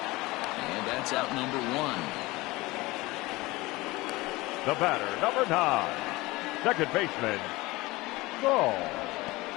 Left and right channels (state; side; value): quieter; right; 21.1 dB